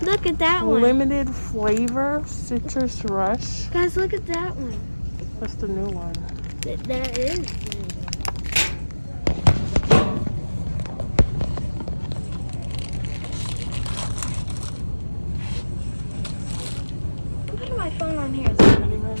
Look at that one. Limited flavor, citrus rush. Guys, look at that one. That's the new one. There is. I'm putting my phone on here. Ready,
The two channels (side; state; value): both; inverted; correlation -1.00